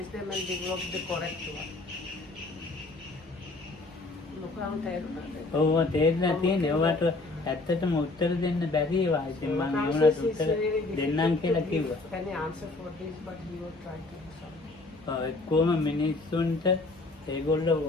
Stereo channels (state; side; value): quieter; right; 3.2 dB